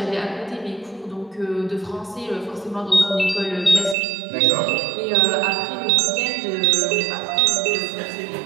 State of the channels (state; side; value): drops out; left; at 4.0 s